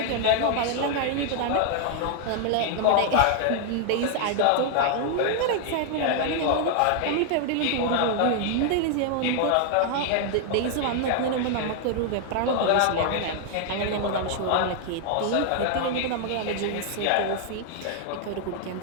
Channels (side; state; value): both; different; correlation 0.00